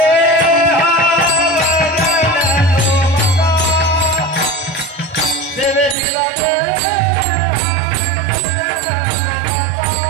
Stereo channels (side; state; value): left; drops out; at 6.0 s